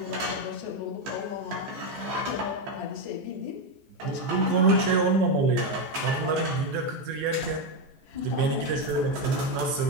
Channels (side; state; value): left; late; 14 ms